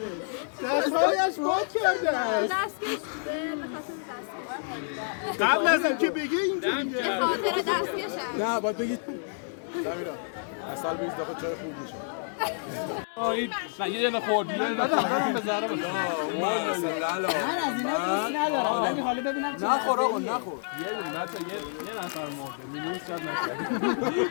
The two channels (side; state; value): right; silent; 59 dB below the other